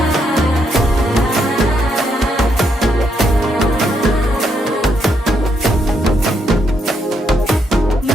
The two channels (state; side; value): normal; both; correlation 0.77